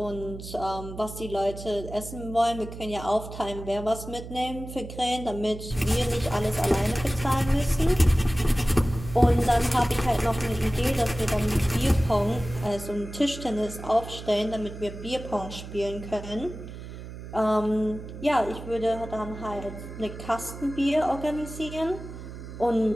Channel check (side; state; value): right; noise; hum, 11 dB below the sound